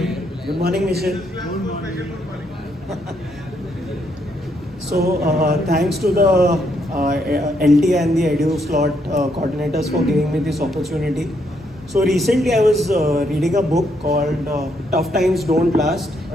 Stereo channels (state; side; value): normal; both; correlation 0.75